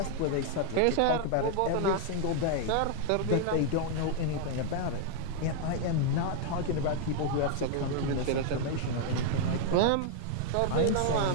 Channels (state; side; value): different; both; correlation 0.00